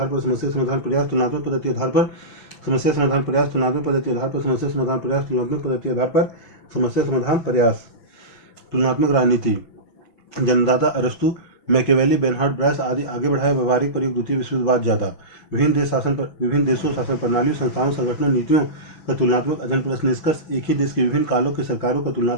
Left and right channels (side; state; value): right; late; 6.0 ms